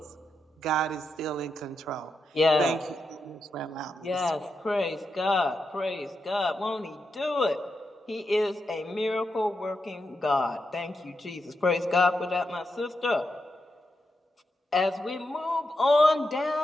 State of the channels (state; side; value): normal; both; correlation 0.85